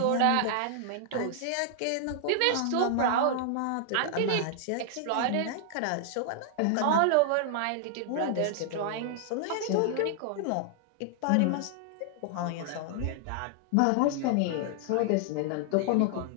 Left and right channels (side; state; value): both; different; correlation 0.00